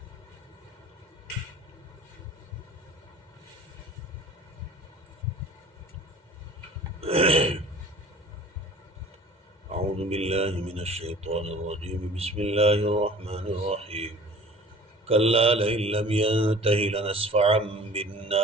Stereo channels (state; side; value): normal; both; correlation 0.45